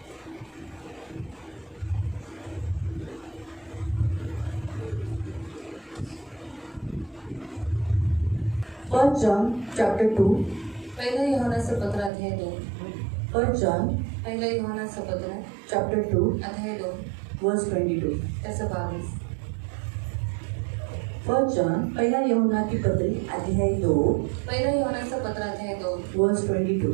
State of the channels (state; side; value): drops out; left; at 12.1 s